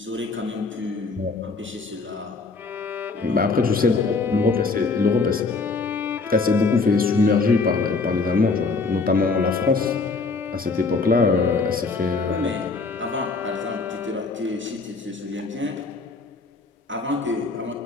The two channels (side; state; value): right; quieter; 4.1 dB